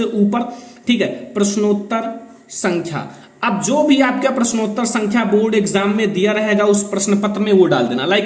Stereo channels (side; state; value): both; identical; correlation 1.00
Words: ऊपर, ठीक है, प्रश्नोत्तर संख्या। अब जो भी आपका प्रश्नोत्तर संख्या बोर्ड एग्जाम में दिया रहेगा उस प्रश्न पत्र में वो डाल देना।